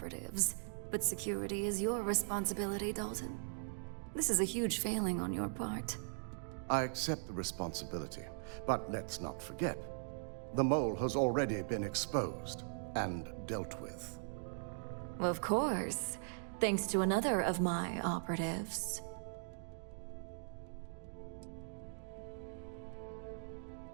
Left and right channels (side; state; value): left; silent; digital silence